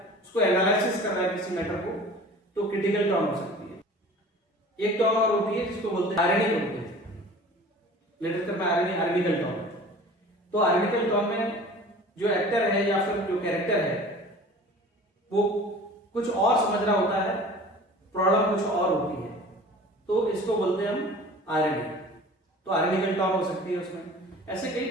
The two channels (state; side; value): normal; both; correlation 0.43